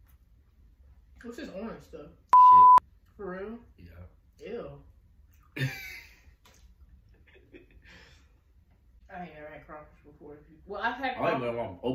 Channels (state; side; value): identical; both; correlation 1.00